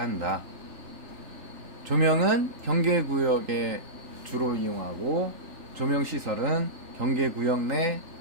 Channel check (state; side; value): late; left; 3.4 ms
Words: 한다. 조명은 경계구역에 주로 이용하고 조명시설은 경계구역 내